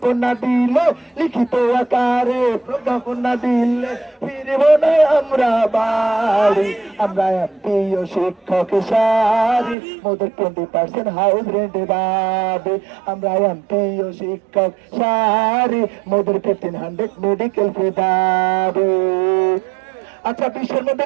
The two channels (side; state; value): left; drops out; at 9.8 s